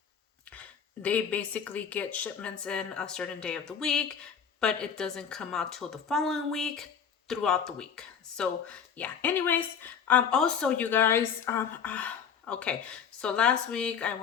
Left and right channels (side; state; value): right; quieter; 7.2 dB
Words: they basically get shipments in a certain day of the week, but it doesn't come out till the following week throughout the week. So yeah, anyways, also you guys, okay, so last week I